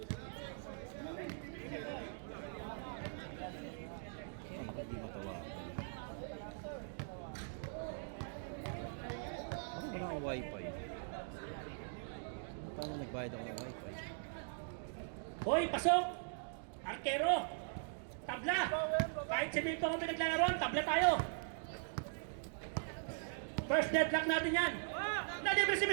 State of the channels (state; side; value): silent; left; digital silence